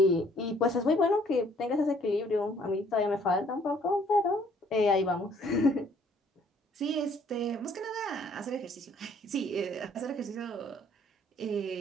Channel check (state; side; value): normal; both; correlation 0.61